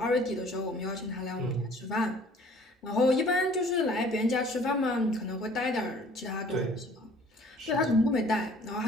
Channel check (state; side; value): normal; both; correlation 0.54